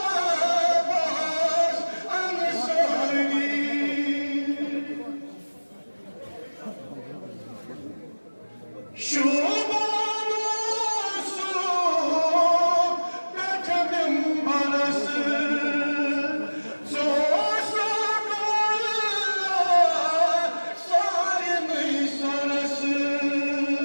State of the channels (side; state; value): both; inverted; correlation -1.00